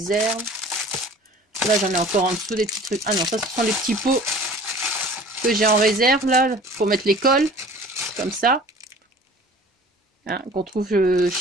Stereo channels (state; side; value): normal; both; correlation 0.46